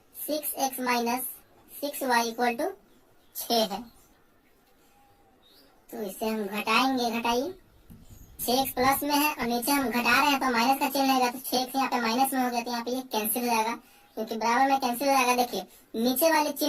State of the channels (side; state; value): both; identical; correlation 1.00